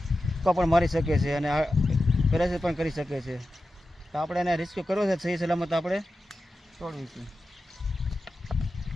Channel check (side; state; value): both; normal; correlation 0.92